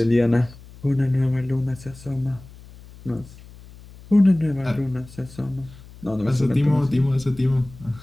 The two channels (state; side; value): noise; left; hum, 20 dB below the sound